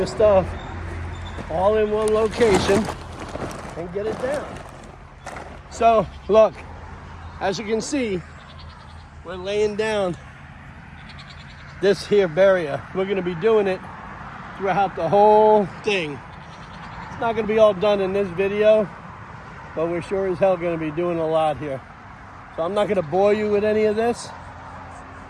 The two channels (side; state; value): both; identical; correlation 1.00